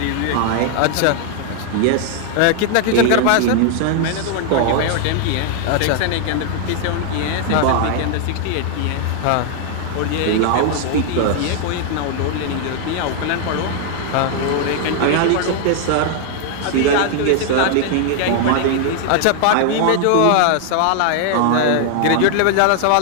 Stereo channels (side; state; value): both; different; correlation 0.00